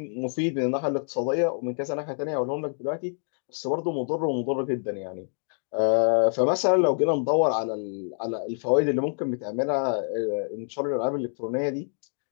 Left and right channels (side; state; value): right; silent; digital silence